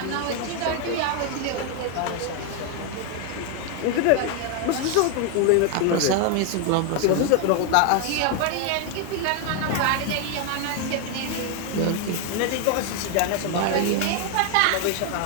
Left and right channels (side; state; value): both; different; correlation 0.01